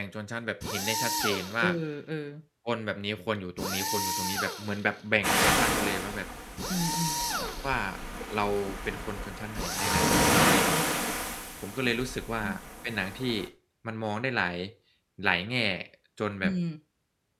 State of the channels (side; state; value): both; identical; correlation 1.00